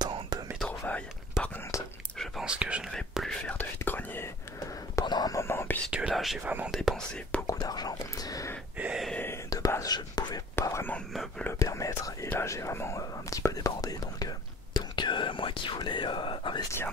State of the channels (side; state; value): both; normal; correlation 0.49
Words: de mes trouvailles. Par contre, je pense que je ne vais plus faire de vide-grenier pendant un moment, puisque là j'ai vraiment dépensé beaucoup d'argent. Et de base je ne pouvais pas vraiment me le permettre. Et là j'ai vraiment un petit peu débordé. Donc moi qui voulais investir un